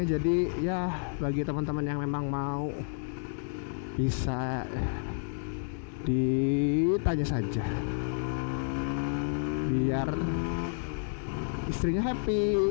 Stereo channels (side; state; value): right; silent; digital silence